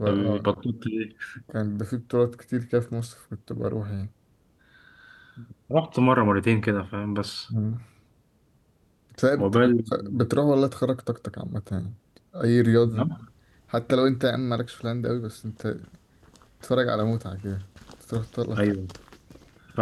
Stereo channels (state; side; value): identical; both; correlation 1.00